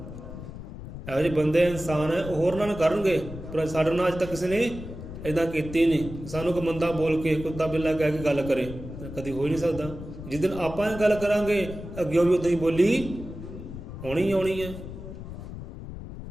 ਇਹੋ ਜਿਹੇ ਬੰਦੇ ਇਨਸਾਨ ਹੈ, ਉਹ ਹੋਰ ਨਾਲ ਕਰਨਗੇ, ਪਰ ਸਾਡੇ ਨਾਲ ਅੱਜ ਤੱਕ ਕਿਸੇ ਨੇ ਇੱਦਾਂ ਕੀਤੀ ਨਹੀਂ। ਸਾਨੂੰ ਕੋਈ ਮੰਦਾ ਬੋਲ ਕੇ, ਕੁੱਤਾ ਬਿੱਲਾ ਕਹਿ ਕੇ ਗੱਲ ਕਰੇ, ਕਦੀ ਹੋ ਹੀ ਨਹੀਂ ਸਕਦਾ। ਜਿਸ ਦਿਨ ਆਪਾਂ ਇਹ ਗੱਲ ਕਰਾਂਗੇ ਅੱਗਿਓਂ ਵੀ ਉੱਦਾਂ ਹੀ ਬੋਲੀ ਹੋਣੀ ਆਉਣੀ ਹੈ।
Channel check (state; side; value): noise; left; rumble, 11 dB below the sound